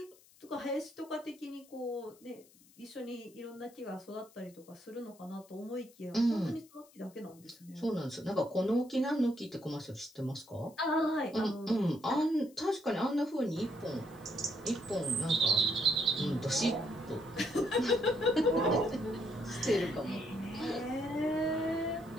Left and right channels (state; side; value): noise; left; hiss, 26 dB below the sound